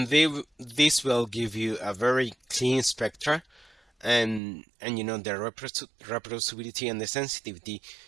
this will give you a very clean spectra, and you know the reproducibility and the sensitivity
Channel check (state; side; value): drops out; left; at 4.4 s